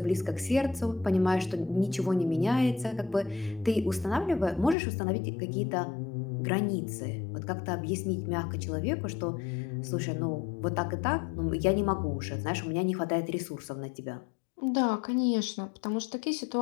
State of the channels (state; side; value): drops out; right; at 4.8 s